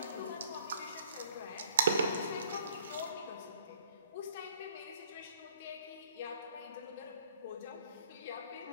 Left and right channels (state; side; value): inverted; both; correlation -0.60